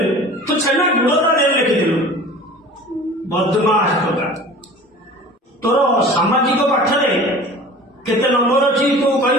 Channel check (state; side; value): normal; both; correlation 0.42